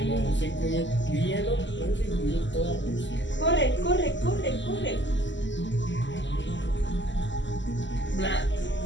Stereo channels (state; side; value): late; right; 0.54 ms